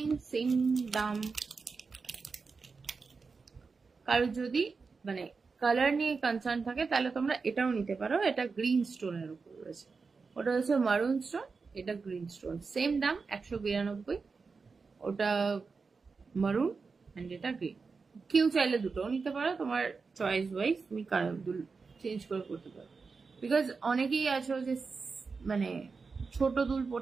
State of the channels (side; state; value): left; quieter; 4.7 dB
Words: সেম দাম। কারো যদি মানে কালার নিয়ে কনসার্ন থাকে তাহলে তোমরা এটাও নিতে পারো। এটা গ্রিন স্টোনের উপর রয়েছে, ওটা হচ্ছে মারুন স্টোন, এটা গ্রিন স্টোন। সেম দাম 192, ওটা মারুন অ্যান্ড এটা গ্রিন। কেউ চাইলে দুটোও নিতে পারো, তোমার চয়েস ওয়াইজ তুমি কালার চেঞ্জ করে করতে পারো। বিকজ অনেকেই আছো যে মানে ছোট দুল